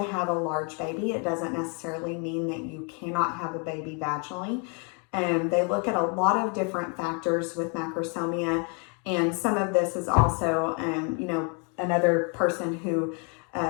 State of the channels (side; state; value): right; quieter; 36.7 dB